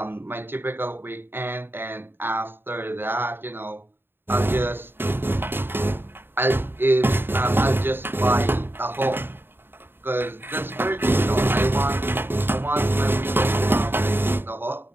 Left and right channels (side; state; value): left; late; 0.10 ms